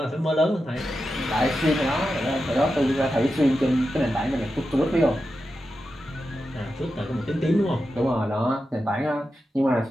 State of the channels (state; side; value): normal; both; correlation 0.90